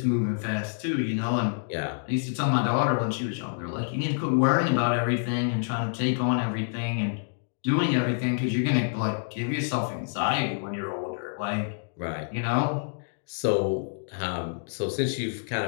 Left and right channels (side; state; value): right; silent; digital silence